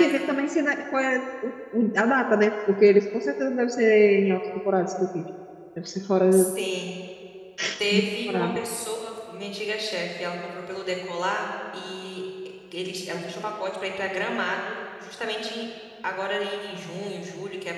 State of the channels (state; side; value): identical; both; correlation 1.00